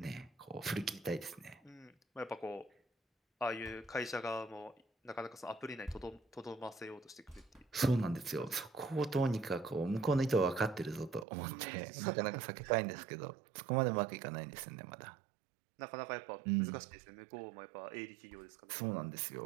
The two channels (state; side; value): drops out; left; at 11.2 s